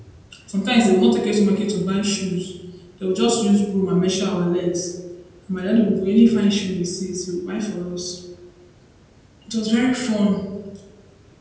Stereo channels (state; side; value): identical; both; correlation 1.00